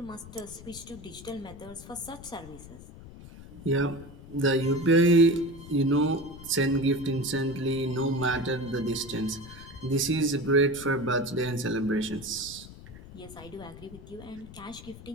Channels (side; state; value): left; noise; rumble, 16 dB below the sound